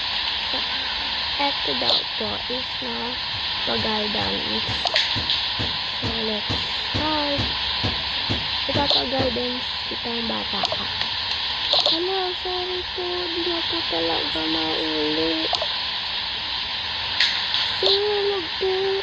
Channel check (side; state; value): both; identical; correlation 1.00